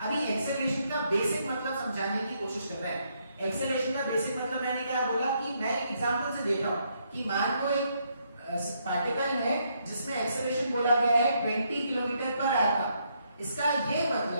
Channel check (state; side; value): inverted; both; correlation -0.75